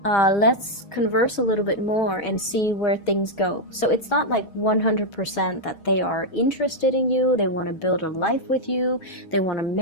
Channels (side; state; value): right; late; 6.2 ms